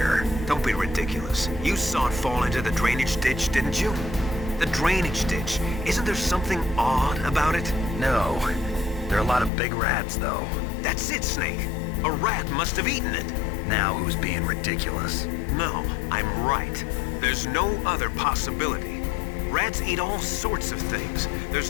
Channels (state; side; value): drops out; right; at 9.5 s